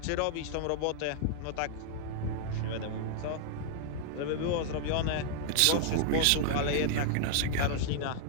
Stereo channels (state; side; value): different; both; correlation -0.01